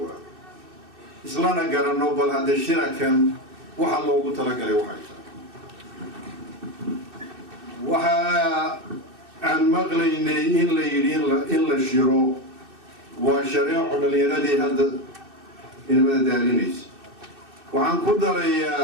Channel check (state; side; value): late; left; 2.6 ms